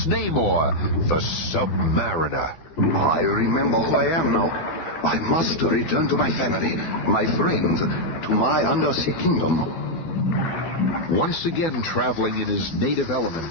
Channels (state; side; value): late; right; 12 ms